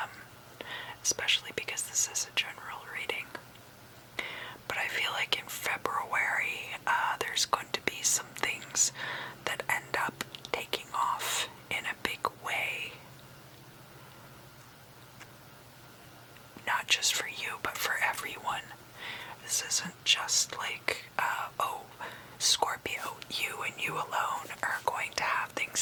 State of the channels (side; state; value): both; identical; correlation 1.00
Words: Especially because this is a general reading. But I feel like in February, there's going to be some things that end up taking off in a big way. Not just for you, but for everyone. This isn't just like, Scorpio, you and you alone are going to have